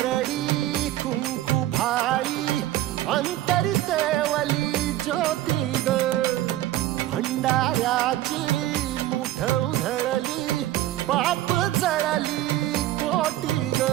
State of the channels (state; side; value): quieter; left; 14.6 dB